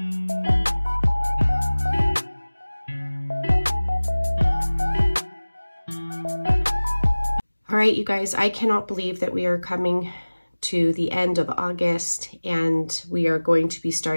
All right, you guys, I cannot believe that we are coming to the end of August and we are going to be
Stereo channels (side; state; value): both; inverted; correlation -1.00